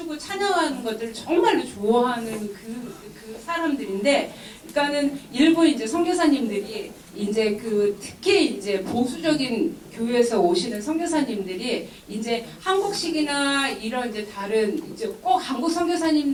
찬양하는 것들을 정말로 좋아하는 그 사람들인데, 그러니까는 일부 이제 선교사님들이 이제 특히 이제 보수적인 교회에서 오시는 선교사님들이 이제 한국식이나 이런 이제 다른 이제 꼭 한국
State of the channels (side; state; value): both; identical; correlation 1.00